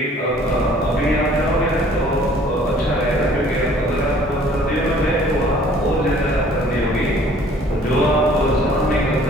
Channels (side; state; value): both; normal; correlation 0.55